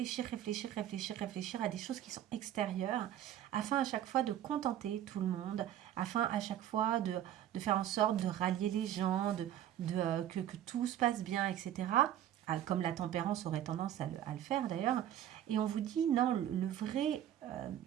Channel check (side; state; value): left; quieter; 11.4 dB